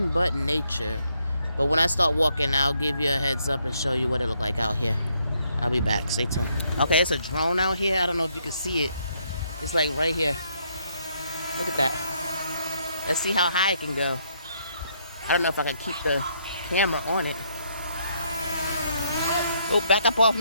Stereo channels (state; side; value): inverted; both; correlation -0.72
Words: but nature. But when I start walking, I'll give you a heads up and show you what it look like out here. I'll be back. Stay tuned. Okay, it's a drone out here. I don't know if you can see it. It's like right here. Look at that. Let's see how high it can go. I don't know if I can keep the camera on it. Oh, back up off